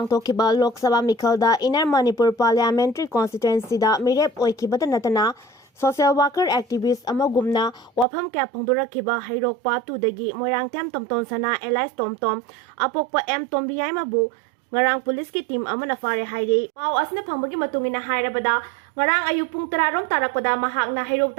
लोक सभा मिखलदा इनर मणिपुर पार्लियामेंट्री कॉन्स्टिट्यूएंसीदा मिरेप ओइखिबदा नतना सोशल वर्कर एक्टिविस्ट अमगुमना वाफम क्या फोंदोरखिबा हैरोकपा तुदगी मोइरांगथेम tomtomsana एलाइस टोमटोम अपोकपा एम तोम्बियाइमाबु ngarang पुलिस की टीम अमना फारे हाइरे पाव असने फंगबगी मतुंगिना हाइरबदा ngarang ayu pung 10 rom tarakpada mahakna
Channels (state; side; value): drops out; left; at 8.1 s